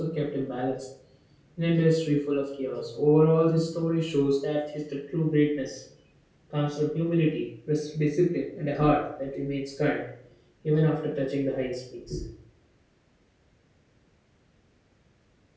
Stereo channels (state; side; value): identical; both; correlation 1.00